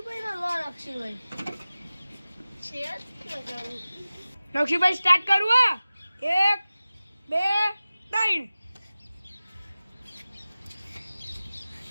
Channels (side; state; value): both; inverted; correlation -0.96